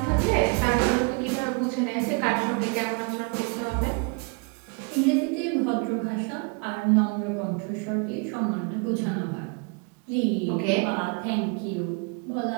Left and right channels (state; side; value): quieter; left; 34.2 dB